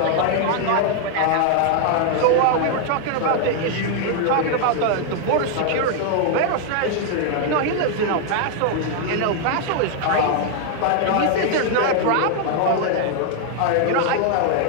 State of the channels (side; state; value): both; different; correlation 0.00